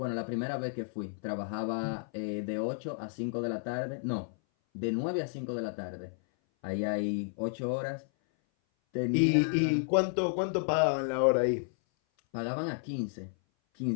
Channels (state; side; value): silent; right; 57 dB below the other